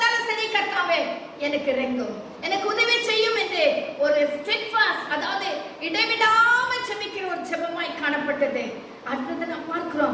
சரி, கர்த்தாவே எனக்கு இறங்கும், எனக்கு உதவி செய்யும் என்று ஒரு steadfast, அதாவது இடைவிடாம ஜெபிக்கிற ஒரு ஜெபமாய் காணப்பட்டது. அடுத்தது நாம்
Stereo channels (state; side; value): identical; both; correlation 1.00